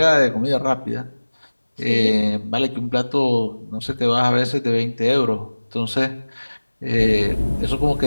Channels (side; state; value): both; inverted; correlation -1.00